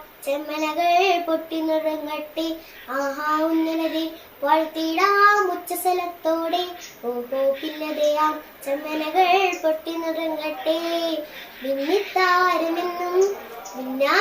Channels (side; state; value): both; identical; correlation 1.00